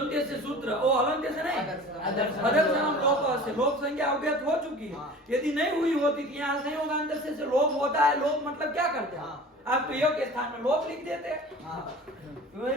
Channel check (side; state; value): both; normal; correlation 0.40